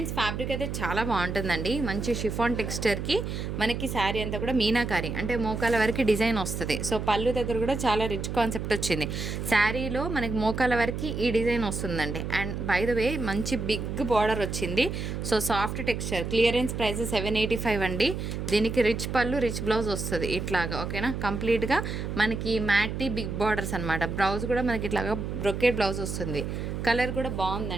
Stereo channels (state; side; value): noise; right; hum, 4 dB below the sound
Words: ఫ్యాబ్రిక్ అయితే చాలా బాగుంటుందండి. మంచి షిఫాన్ టెక్స్చర్కి మనకి శారీ అంతా కూడా మీనాకారి అంటే మోకాల వరకు డిజైన్ వస్తుంది. సో పళ్ళు దగ్గర కూడా చాలా రిచ్ కాన్సెప్ట్ వచ్చింది. శారీలో మనకి మోకాల వరకు ఈ డిజైన్ వస్తుందండి. అండ్ బై ద వే మంచి బిగ్ బార్డర్ వచ్చింది. So soft texture. Clearance price 785 అండి. దీనికి రిచ్ పళ్ళు, రిచ్ బ్లౌజ్ వస్తుంది ఇట్లాగా. ఓకేనా? కంప్లీట్గా మనకి మ్యాటీ బిగ్ బార్డర్స్ అనమాట. బ్లౌజ్ కూడా మనకి ఇట్లాగా బ్రొకేట్ బ్లౌజ్ వస్తుంది. కలర్ కూడా